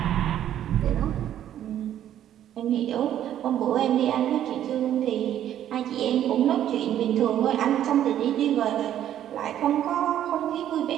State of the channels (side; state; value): left; quieter; 11.1 dB